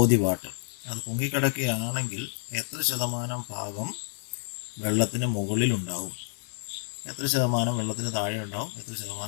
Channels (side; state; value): right; silent; 58 dB below the other